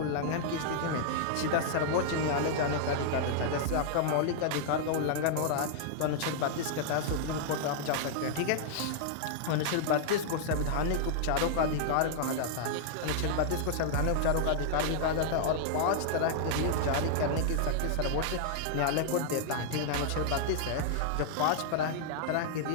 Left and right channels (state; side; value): different; both; correlation -0.01